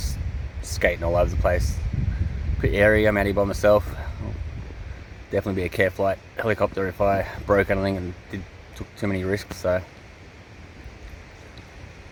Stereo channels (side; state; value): both; identical; correlation 1.00